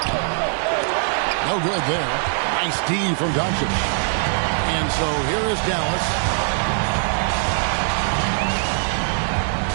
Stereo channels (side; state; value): left; silent; digital silence